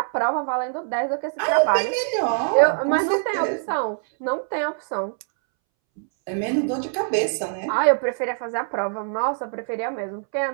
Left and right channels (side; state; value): left; silent; 63 dB below the other